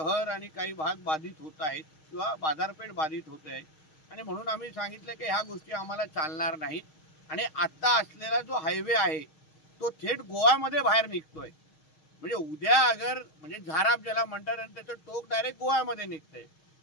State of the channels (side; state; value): right; late; 6.4 ms